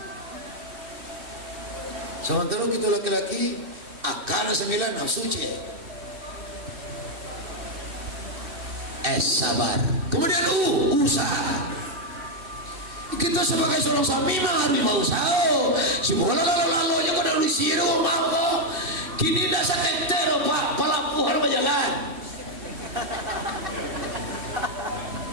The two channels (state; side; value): late; left; 2.6 ms